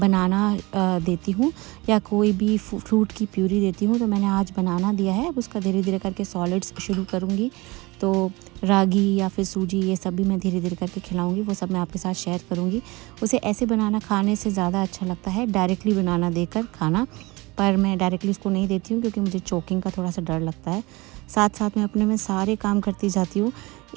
देती हूँ या कोई भी फ्रूट की प्यूरी देती हूँ। तो मैंने आज बनाना दिया है, अब उसका धीरे धीरे करके सॉलिड्स शुरू करूँगी। तो रागी या फिर सूजी, ये सब भी मैं धीरे धीरे करके खिलाऊंगी, वो सब मैं आपके साथ शेयर करूँगी। उसे ऐसे बनाना खाने से ज़्यादा अच्छा लगता है डायरेक्टली बनाना देकर खाना, पर मैं डायरेक्टली उसको नहीं देती हूँ क्योंकि मुझे चोकिंग का थोड़ा सा डर लगता है। साथ साथ में अपने में सारे काम करती जाती हूँ,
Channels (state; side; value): quieter; left; 23.1 dB